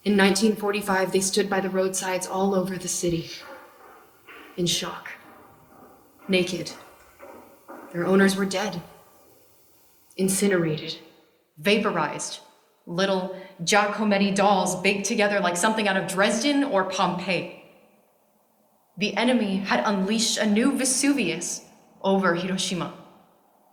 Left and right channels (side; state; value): both; identical; correlation 1.00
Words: In 1945, they stood by the roadsides all over the city, in shock, naked. Their owners were dead, incinerated, vaporized, little Giacometti dolls baked together like something out of Dresden or Pompeii. The enemy had unleashed a new Vesuvius over Hiroshima.